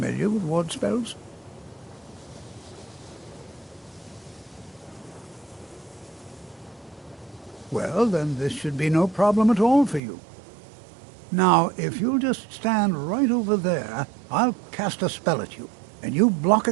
with ward spells? Well, then this should be no problem at all for you. Now, if you'll just stand right over there, I'll cast a spell at you, and you block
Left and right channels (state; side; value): drops out; left; at 10.0 s